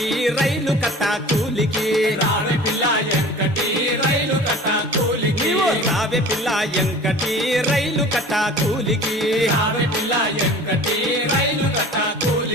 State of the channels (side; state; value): both; normal; correlation 0.42